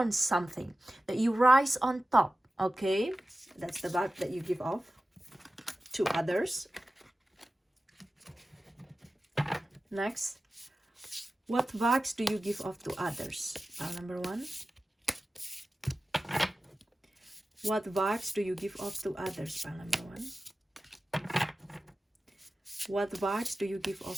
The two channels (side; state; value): both; normal; correlation 0.95